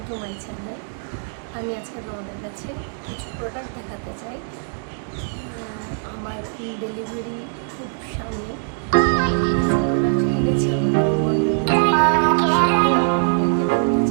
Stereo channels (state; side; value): silent; left; 62 dB below the other